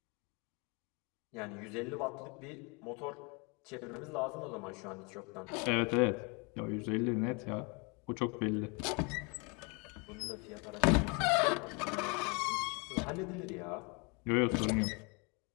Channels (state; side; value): quieter; right; 31.6 dB